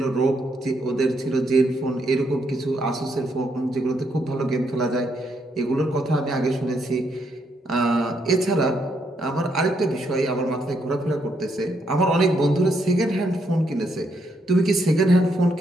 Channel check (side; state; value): both; normal; correlation 0.76